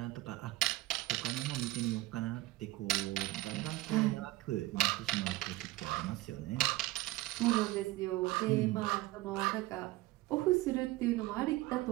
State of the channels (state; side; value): quieter; left; 17.9 dB